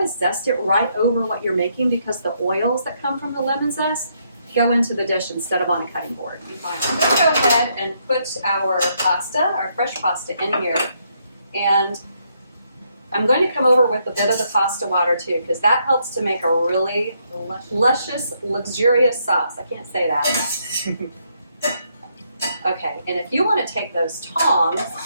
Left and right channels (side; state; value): both; inverted; correlation -0.75